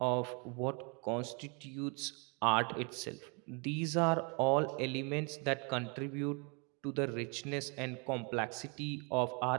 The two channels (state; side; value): quieter; left; 34.3 dB